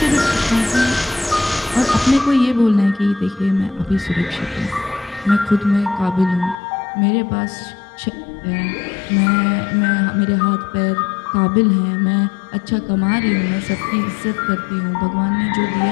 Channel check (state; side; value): drops out; right; at 6.6 s